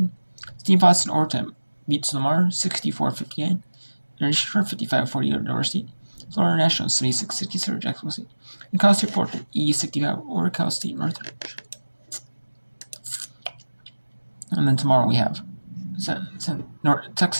Steve Boston overtime beats Lamar 64-59. And Shore 55-40 over Delaware State. Florida National 76-67 over Jacksonville State. And Cal State Fulton 80-65 over Cal State Northridge. And then tomorrow we have North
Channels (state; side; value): inverted; both; correlation -1.00